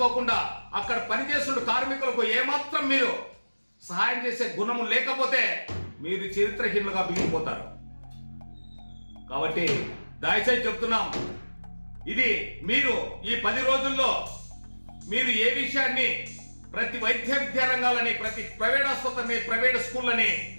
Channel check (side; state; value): both; inverted; correlation -1.00